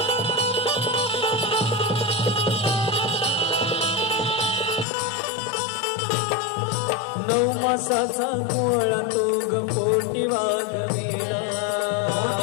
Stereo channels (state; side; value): drops out; right; at 4.9 s